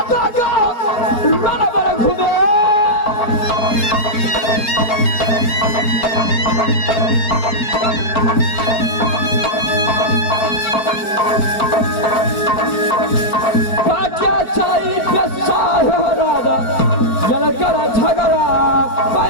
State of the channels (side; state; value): right; late; 4.6 ms